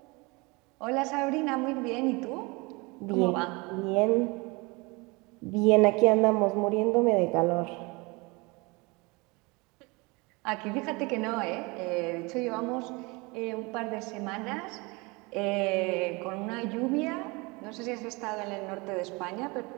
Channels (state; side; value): quieter; left; 26.3 dB